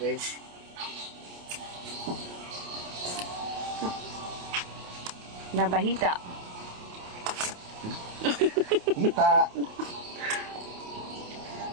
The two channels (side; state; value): left; late; 28 ms